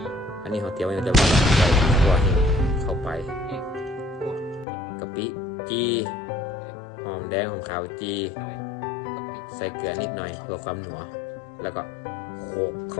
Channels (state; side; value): drops out; right; at 4.7 s